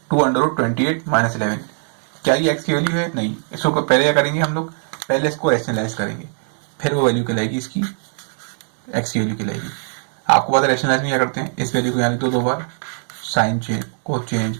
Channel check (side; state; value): left; silent; 65 dB below the other